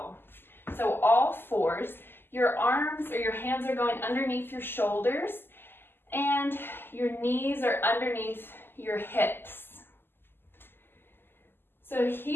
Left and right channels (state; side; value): late; right; 0.10 ms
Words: So all fours, your arms or your hands are going underneath your shoulders, and your knees are underneath your hips. So